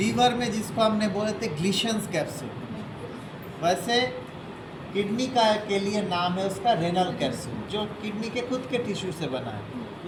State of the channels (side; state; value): both; identical; correlation 1.00